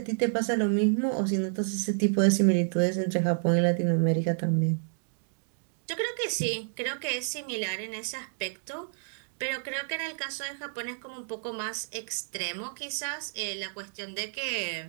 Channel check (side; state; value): left; silent; digital silence